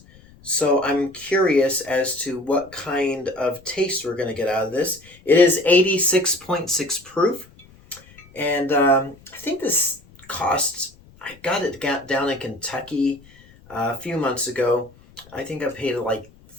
So I'm curious as to what kind of taste we're going to get out of this. It is 86.6 proof, and I think this costs, I got it down in Kentucky a few months ago. I think I paid like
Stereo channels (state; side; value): noise; left; rumble, 26 dB below the sound